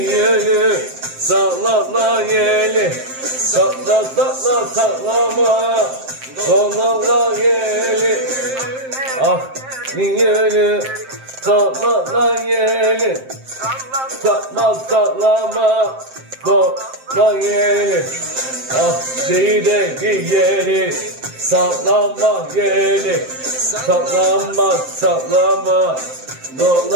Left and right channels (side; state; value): left; late; 7.6 ms